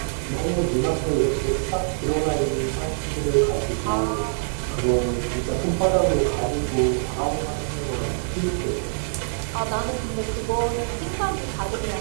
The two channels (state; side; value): silent; left; 62 dB below the other